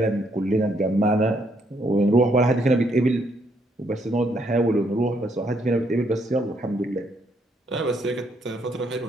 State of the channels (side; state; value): both; normal; correlation 0.72